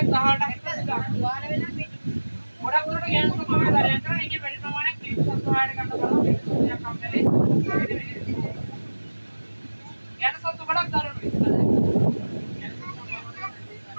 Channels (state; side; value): inverted; both; correlation -1.00